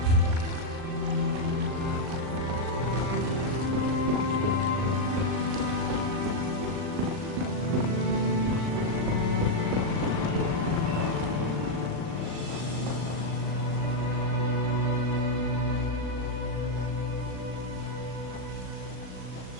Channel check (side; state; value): left; late; 39 ms